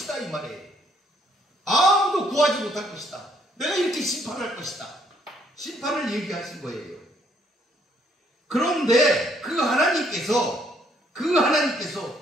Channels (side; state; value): both; normal; correlation 0.68